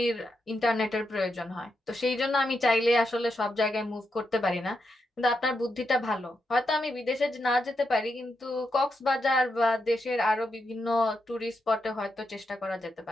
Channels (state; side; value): normal; both; correlation 0.84